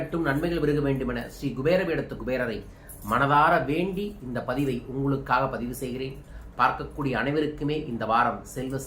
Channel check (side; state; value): both; identical; correlation 1.00